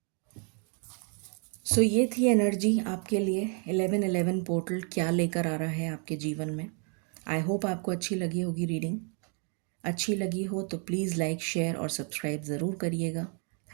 सो ये थी एनर्जी आपके लिए। 1111 पोर्टल क्या लेकर आ रहा है आपके जीवन में। आई होप आपको अच्छी लगी होगी रीडिंग। अच्छी लगी हो तो प्लीज़ लाइक, शेयर और सब्सक्राइब ज़रूर करिएगा।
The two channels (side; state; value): left; quieter; 39.3 dB